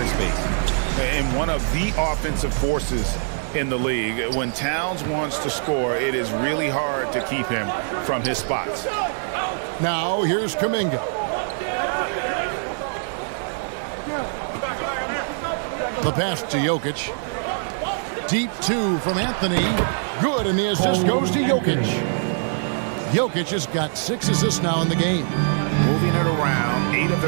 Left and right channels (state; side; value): silent; left; 63 dB below the other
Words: And one of the offensive forces in the league. When Towns wants to score, it is really hard to keep him from his spots. Now here's Kuminga. The pass to Jokic. Deep 2 from Anthony. Good, and the assist goes to Jokic. Jokic has got 6 assists now in the game. Moving it around, 8 of